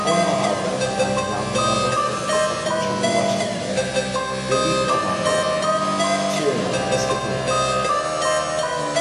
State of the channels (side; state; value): both; identical; correlation 1.00